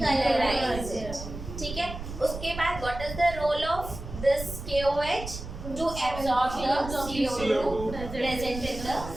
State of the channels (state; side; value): noise; right; rumble, 10 dB below the sound